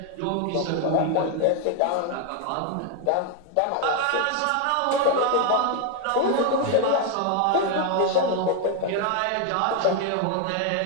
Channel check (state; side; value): different; both; correlation 0.01